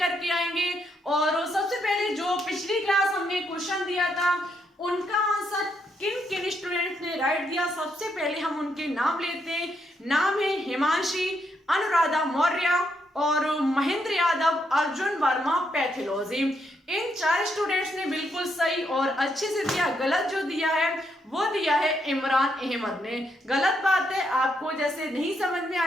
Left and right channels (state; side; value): normal; both; correlation 0.77